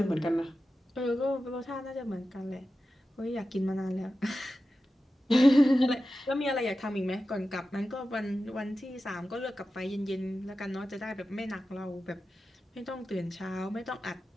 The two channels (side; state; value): both; normal; correlation 0.93